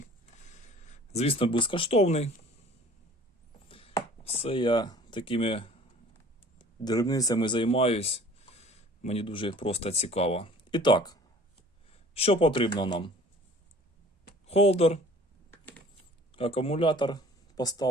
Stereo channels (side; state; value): both; normal; correlation 0.49